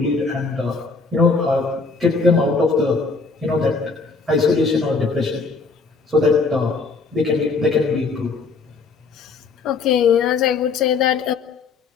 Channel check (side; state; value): right; quieter; 4.4 dB